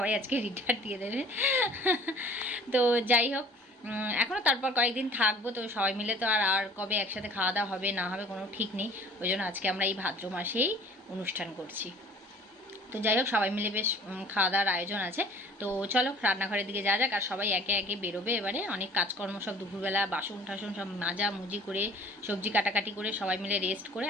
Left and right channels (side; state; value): both; normal; correlation 0.49